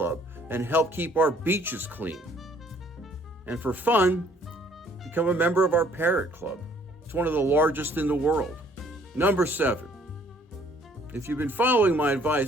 and help keep our beaches clean. And for fun, become a member of our Parrot Club. It's one of the largest in the world. Number 7, if you've been following my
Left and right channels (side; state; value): both; normal; correlation 0.61